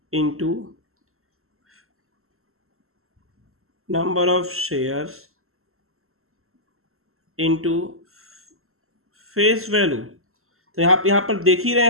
into number of shares into face value. तो यहाँ पर देख ही रहे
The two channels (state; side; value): late; left; 0.62 ms